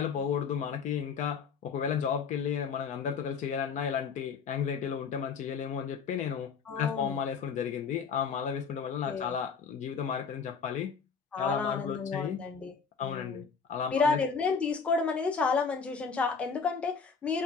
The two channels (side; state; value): right; quieter; 5.8 dB